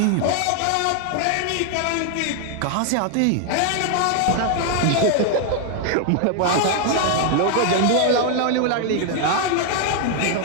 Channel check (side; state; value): both; different; correlation 0.00